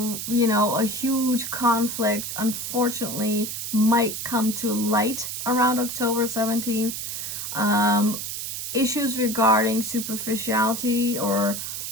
know, a huge conflict, unfortunately, might come to light around October 17th. Issues regarding superficiality, or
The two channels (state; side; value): noise; right; hiss, 5 dB below the sound